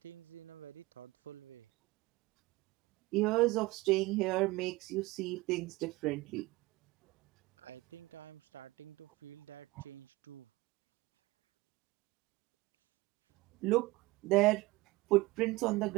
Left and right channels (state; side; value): quieter; left; 20.9 dB